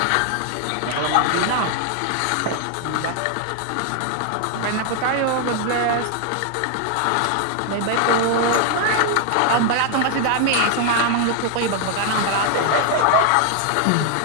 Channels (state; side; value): different; both; correlation 0.00